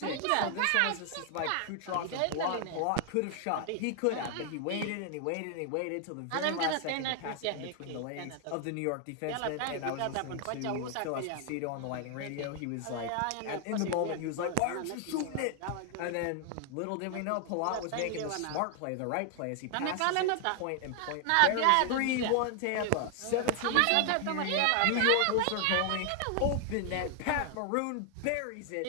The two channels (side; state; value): both; different; correlation 0.00